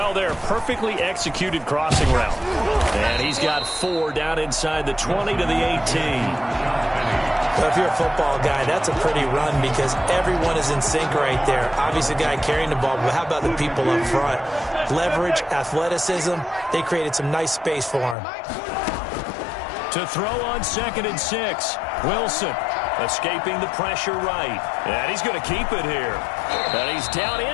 there. Perfectly executed crossing route. And he's got 4 down inside the 20 to the 18. But if you're a football guy, that's a pretty run because everyone is in sync right there. Obviously, the guy carrying the ball, but how about the people up front? Leverage, athleticism, they created some nice space for him. To throw on 2nd and 6, Wilson escaping the pressure right. And he's going to keep it here. And he's down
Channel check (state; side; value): drops out; right; at 18.2 s